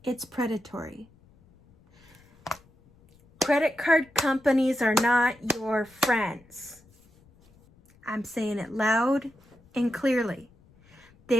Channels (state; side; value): noise; left; rumble, 29 dB below the sound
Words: It's predatory. Credit card companies are not your friends. I'm saying it loud and clearly.